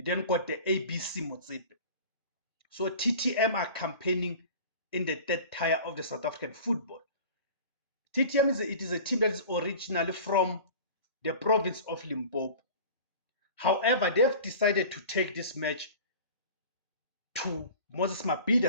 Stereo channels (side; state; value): both; inverted; correlation -0.39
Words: then got the ABC Motsepe. So TTM are campaigning in the third tier of the South African football. TTM is a team that is originally from the province of Limpopo. However, they've decided to take this match to Moses